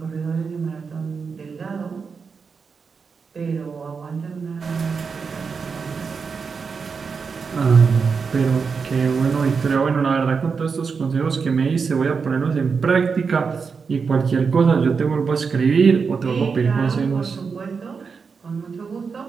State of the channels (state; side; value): quieter; left; 5.4 dB